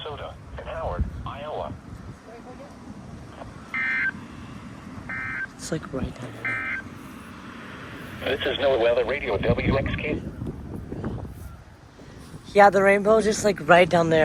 and Howard, Iowa. It's like right down there. This is NOAA Weather Radio WXK. Yeah, the rainbow's just like right down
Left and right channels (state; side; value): identical; both; correlation 1.00